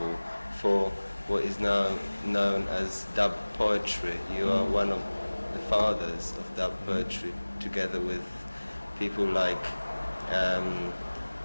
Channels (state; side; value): inverted; both; correlation -1.00